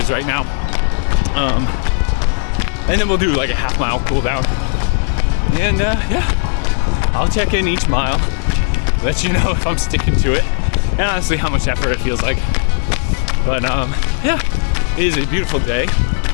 right now. And then we'll do a half mile cool down. And I'll check in each mile, let you know if I'm sticking to it, and honestly how much effort it feels like. But it is a beautiful day.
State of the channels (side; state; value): right; silent; 68 dB below the other